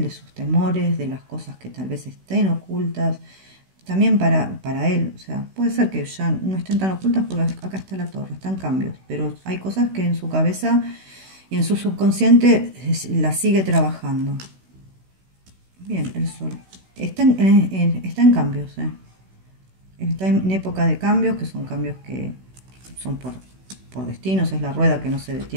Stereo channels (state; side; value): late; left; 16 ms